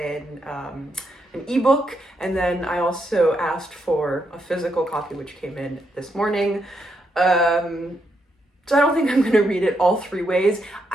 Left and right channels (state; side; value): normal; both; correlation 0.80